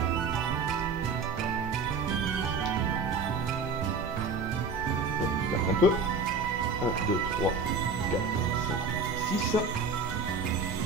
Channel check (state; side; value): quieter; left; 4.2 dB